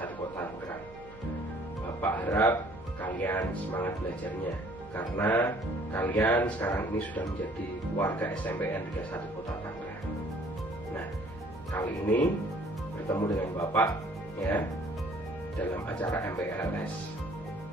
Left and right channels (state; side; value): noise; right; hum, 20 dB below the sound